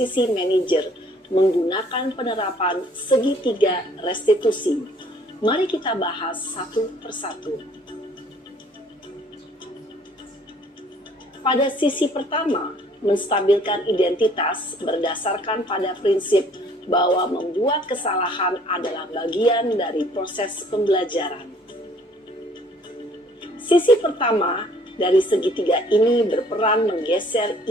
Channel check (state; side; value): normal; both; correlation 0.58